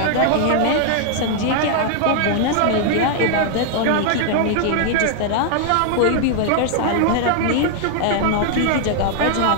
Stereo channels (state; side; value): different; both; correlation 0.00